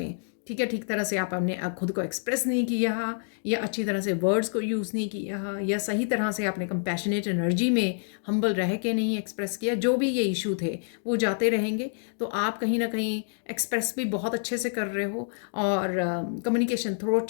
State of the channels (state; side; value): silent; right; digital silence